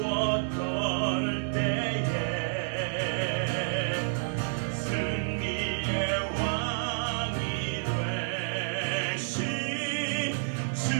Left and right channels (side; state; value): left; silent; 58 dB below the other